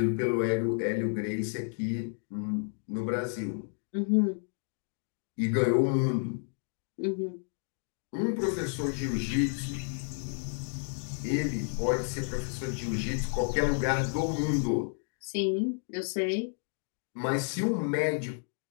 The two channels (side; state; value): right; silent; 57 dB below the other